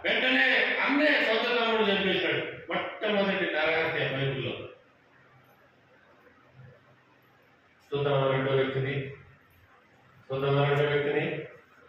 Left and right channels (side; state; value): both; identical; correlation 1.00